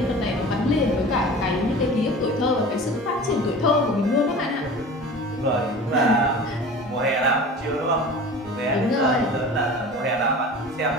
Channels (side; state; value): both; normal; correlation 0.38